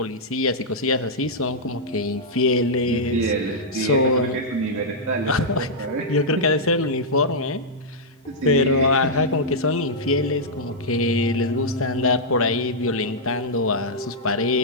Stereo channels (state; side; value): normal; both; correlation -0.08